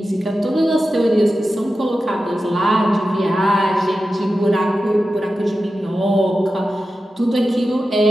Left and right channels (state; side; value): normal; both; correlation 0.92